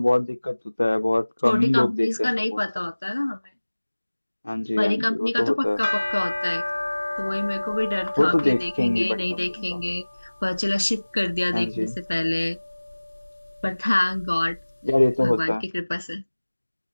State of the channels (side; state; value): both; inverted; correlation -1.00